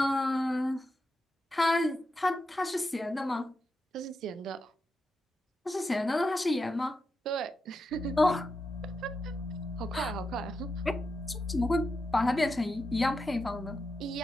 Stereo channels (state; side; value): normal; both; correlation 0.87